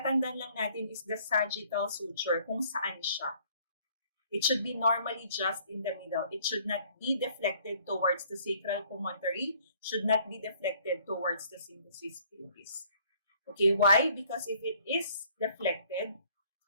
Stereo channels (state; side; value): inverted; both; correlation -0.60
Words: lang natin is the sagittal suture, kung saan siya. It should be normally just in the middle. It should not be deflected towards the sacral promontory, should not be deflected towards the symphysis pubis. Okay, why? Because if it is deflected,